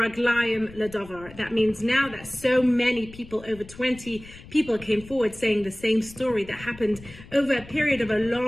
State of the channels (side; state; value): left; noise; rumble, 19 dB below the sound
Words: ledavar. That means now that so many people, over 20 people came forward saying the same story that happened over a period of a